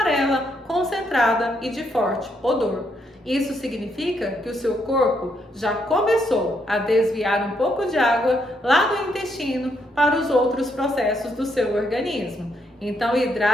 concentrada e de forte odor. Isso significa que o seu corpo já começou a desviar um pouco de água lá do intestino para os outros processos do seu organismo. Então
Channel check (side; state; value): both; normal; correlation 0.76